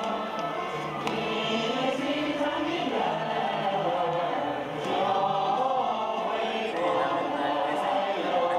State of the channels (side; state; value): both; identical; correlation 1.00